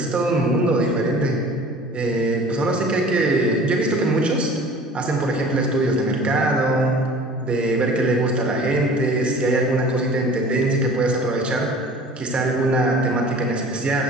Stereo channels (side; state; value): both; normal; correlation 0.45